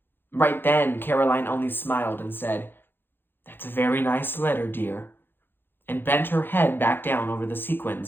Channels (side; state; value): right; late; 0.10 ms